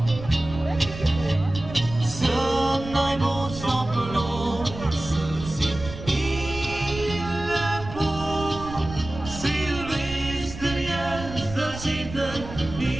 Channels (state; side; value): noise; right; rumble, 11 dB below the sound